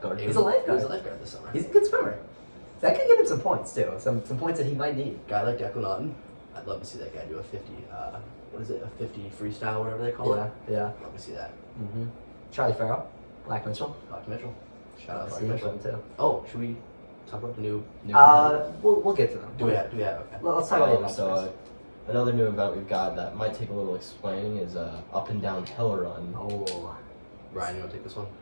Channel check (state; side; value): inverted; both; correlation -1.00